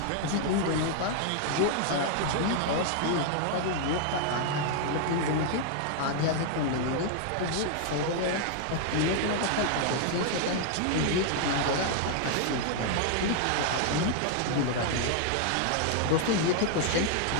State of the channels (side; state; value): both; different; correlation 0.00